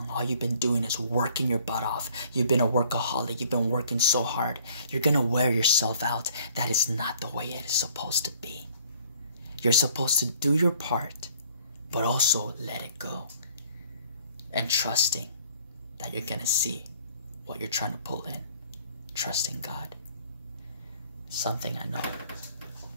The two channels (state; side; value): inverted; both; correlation -0.57